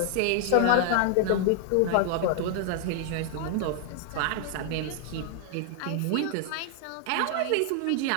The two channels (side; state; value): both; different; correlation 0.00